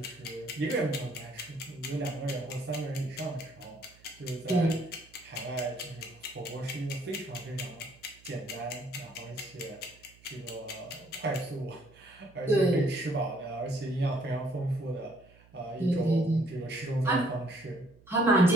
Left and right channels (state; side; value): noise; right; hum, 26 dB below the sound